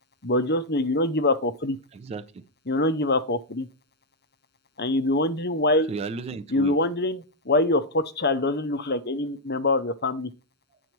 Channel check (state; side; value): normal; both; correlation -0.01